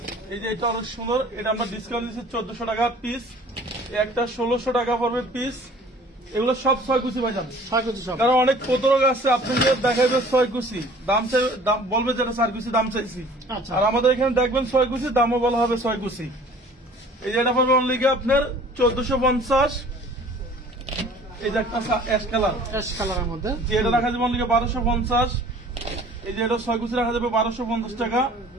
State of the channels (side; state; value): both; normal; correlation 0.50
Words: এই যে এটা অনেক সুন্দর, এটা আমরা ডিসকাউন্ট দিচ্ছি 1400 টাকা পিস। একটা 1600 টাকা পড়বে পিস। এগুলো সব 6 কুচি ভাইজান, 6 কেজি সব। কারণ অনেক প্রতারক আছে, আপনাকে দেখাবে 6 কুচি দাম চাই, দাম বলবে যেটা 4 কুচি দাম চাইছি, আচ্ছা আর আমাদের এখানে দেখবেন 6 কুচি দামও বলা হবে 6 কুচি। এই যে এটা পড়বে অনলি আপনার 1450। এই যে একটা অ্যাশ কালার, অ্যাশ কালারের মধ্যে যে এটা রাখা যাবে অনলি 1250। এই যে এটা 6 কুচি রাখা যাবে 1250 টাকা।